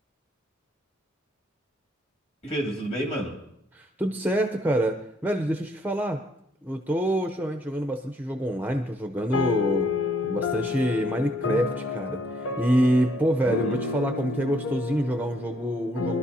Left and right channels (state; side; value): normal; both; correlation 0.68